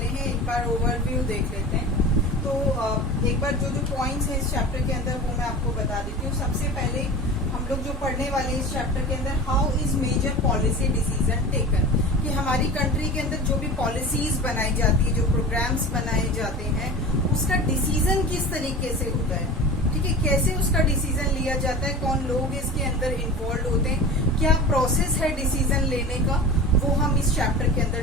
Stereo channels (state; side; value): normal; both; correlation 0.34